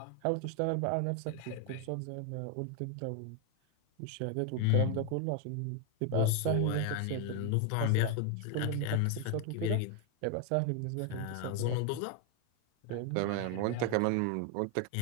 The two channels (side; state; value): both; different; correlation 0.01